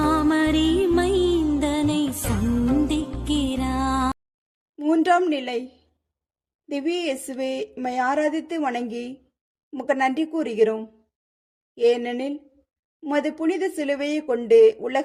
மைந்தனை சந்திக்கிறார். மூன்றாம் நிலை. திவ்ய இயேசுவே, உம்மை ஆராதித்து வணங்கி உமக்கு நன்றி கூறுகிறோம். ஏனெனில் உமது புனித சிலுவையை கொண்டு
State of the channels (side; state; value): both; identical; correlation 1.00